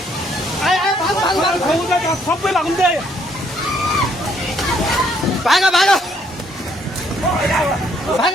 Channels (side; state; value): both; normal; correlation 0.67